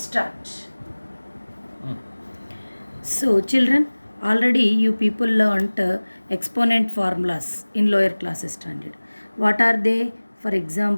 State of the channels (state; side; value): inverted; both; correlation -1.00